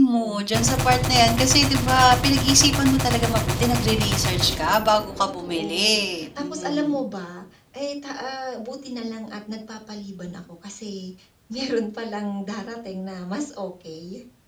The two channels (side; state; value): both; identical; correlation 1.00